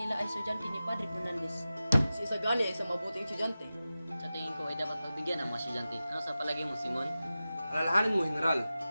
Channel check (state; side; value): inverted; both; correlation -0.95